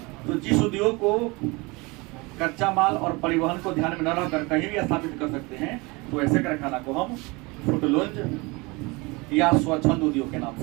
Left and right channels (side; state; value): left; quieter; 25.4 dB